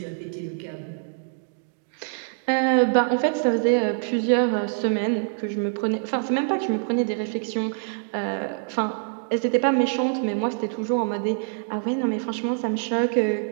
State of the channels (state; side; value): silent; left; digital silence